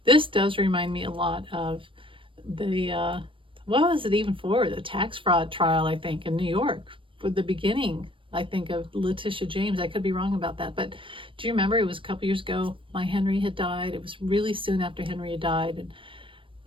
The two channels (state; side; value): late; left; 0.25 ms